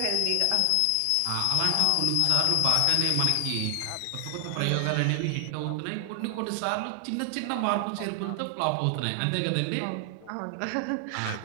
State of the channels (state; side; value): different; both; correlation 0.00